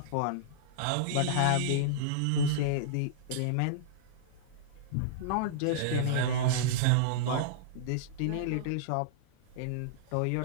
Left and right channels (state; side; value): different; both; correlation -0.02